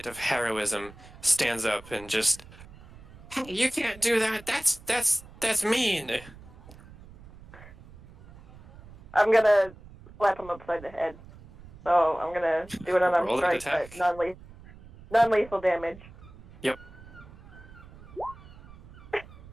of heroism, stands up and just, "Hey, you can't do that. That's mean." I'm gonna slap him upside the head. So I'm gonna do an unarmed Roll an strike, but attack. non-lethal damage. Yep.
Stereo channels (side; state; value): right; noise; rumble, 20 dB below the sound